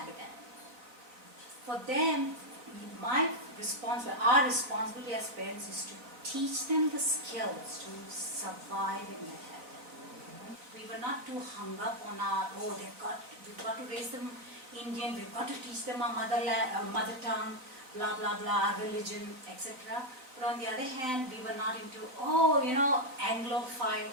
For them, our responsibility as parents is to teach them the skills to survive in that habitat. We were not too hung up on we've got to raise them Indian, we've got to teach them our mother tongue, blah blah blah, our religion, etc. But on the other hand, we were not into, Anglophile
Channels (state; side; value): late; left; 3.9 ms